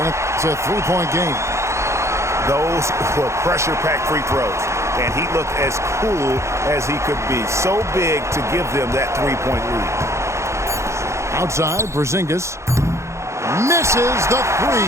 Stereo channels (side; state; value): left; late; 0.14 ms